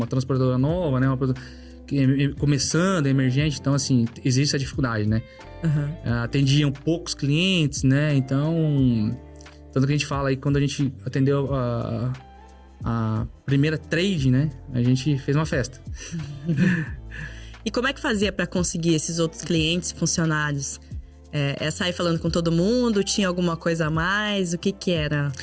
transportadora nova, né? Começando, emergente, então, assim, existe essa dificuldade, né? Atendiam poucos clientes, né? Então Tanto que a gente fala aí, quando a gente atendeu a primeira trade, né? A gente fez uma festa. E como é que fazia para conseguir esses outros clientes, funcionários? É sair falando com todo mundo? Tinha alguma coisa a mais? O que era?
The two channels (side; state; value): both; identical; correlation 1.00